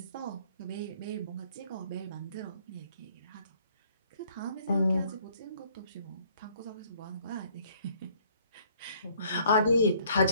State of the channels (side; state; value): both; inverted; correlation -0.61